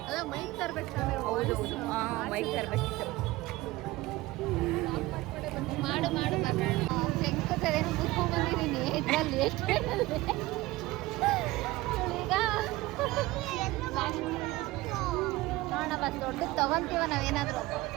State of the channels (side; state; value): left; quieter; 19.2 dB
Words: ಅದ ಮೈಕ್ ತರ್ಬೇಕು ತಾನೆ. ಹೌದು ಮೈಕ್ ತರ್ಬೇಕಿತ್ತು. ಮಾಡು ಶಂಕತೇನು ಮುಚ್ಕೊಂಡ್ ಬಂದಿದ್ದೀನಿ. ಇದ್ರಲ್ಲಿ ಎಷ್ಟು ಈಗ ನೋಡೋಣ ಬಸ್ ದೊಡ್ಡ ತಗೊಂತೀವ ನಾವೇನಾದ್ರು.